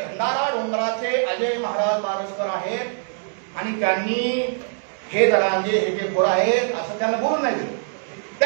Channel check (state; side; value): silent; left; digital silence